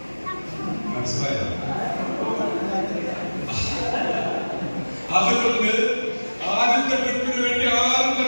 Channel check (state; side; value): inverted; both; correlation -1.00